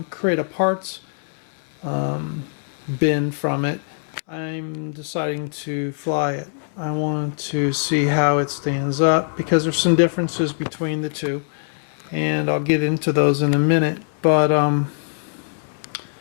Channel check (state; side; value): silent; right; 64 dB below the other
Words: create a parts bin from it, I'm deciding to fly it. I want to see how it stands up because there's some differences between the two, and I'll get into those in a minute. But